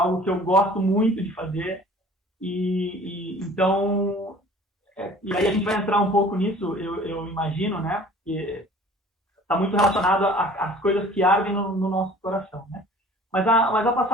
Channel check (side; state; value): both; normal; correlation 0.49